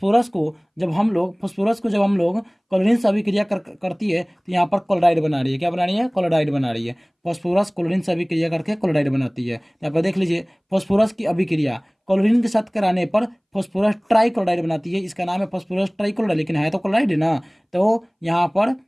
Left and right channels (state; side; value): identical; both; correlation 1.00